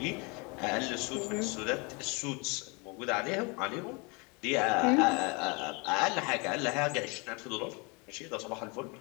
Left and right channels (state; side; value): quieter; right; 29.8 dB